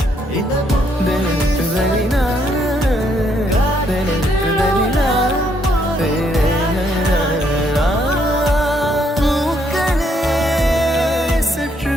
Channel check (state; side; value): normal; both; correlation 0.72